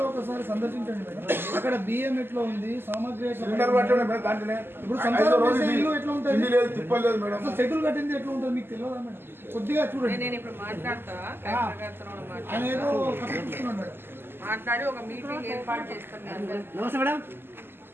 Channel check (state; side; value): late; left; 0.11 ms